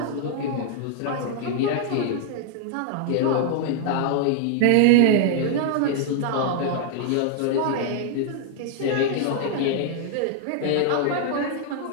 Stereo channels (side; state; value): both; different; correlation 0.00